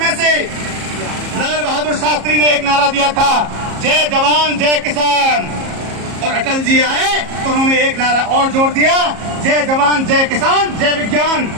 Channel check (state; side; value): late; left; 34 ms